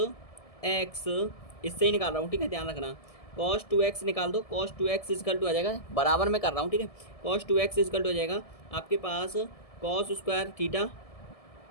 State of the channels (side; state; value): right; late; 1.7 ms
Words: x इससे ही निकाल रहा हूँ, ठीक है, ध्यान रखना। cos 2x निकाल दो, cos 2x इजकल टू आ जाएगा, बराबर में कर रहा हूँ, ठीक है। cos 2x इजकल टू हो जाएगा आपके पास cos square theta